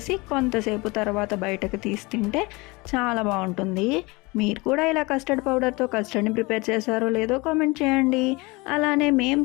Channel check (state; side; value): quieter; right; 24.8 dB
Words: కొంతసేపు తర్వాత బయటకు తీసి తింటే చాలా బాగుంటుంది. మీరు కూడా ఇలా కస్టర్డ్ పౌడర్తో కస్టర్డ్ని ప్రిపేర్ చేశారో లేదో కామెంట్ చేయండి. అలానే మేము